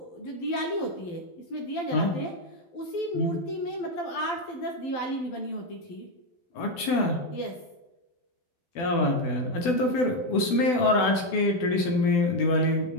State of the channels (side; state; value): right; late; 12 ms